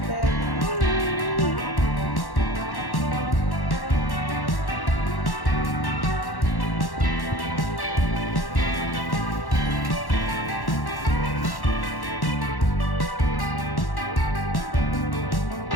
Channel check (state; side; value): late; right; 1.1 ms